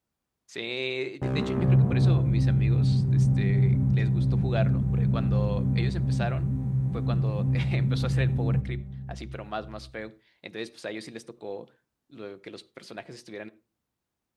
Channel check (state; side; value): identical; both; correlation 1.00